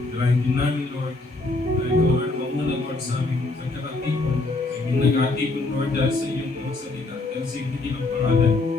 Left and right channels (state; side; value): quieter; right; 3.2 dB